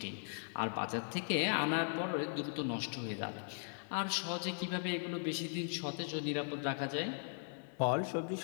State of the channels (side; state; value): right; silent; digital silence